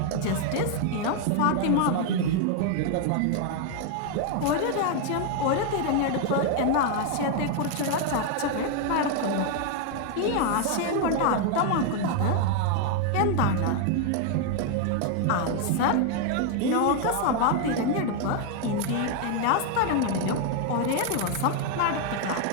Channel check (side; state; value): both; different; correlation 0.00